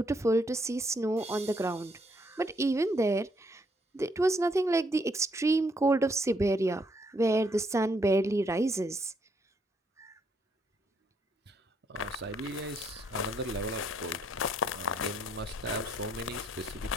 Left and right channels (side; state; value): both; normal; correlation 0.72